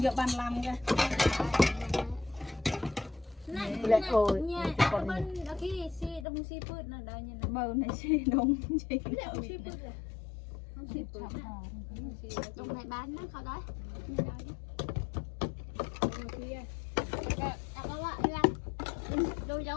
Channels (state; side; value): drops out; right; at 6.2 s